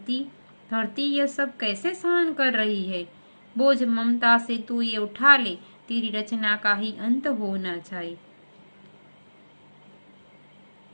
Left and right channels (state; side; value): inverted; both; correlation -1.00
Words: ये सब कैसे सहन कर रही है। बोझ ममता से तू ये उठा ले, तेरी रचना का ही अंत होना चाहिए।